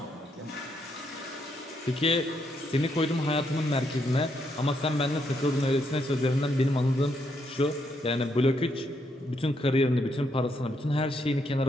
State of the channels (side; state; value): both; normal; correlation 0.77